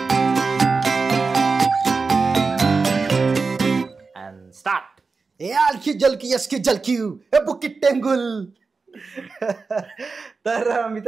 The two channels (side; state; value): left; quieter; 4.4 dB